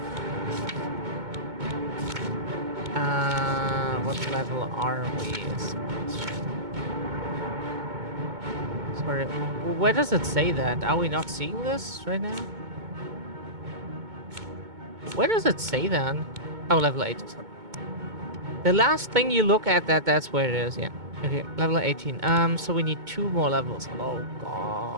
What level are we? Is the question. Sorry, where does it say that? Are we not seeing this right now? Where does it say that? Oh, level 8. Sorry. The last thing you look at, that's where it is, yeah. Okay, level 18. So we need 2 more levels. Oh,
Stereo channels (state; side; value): late; left; 2.2 ms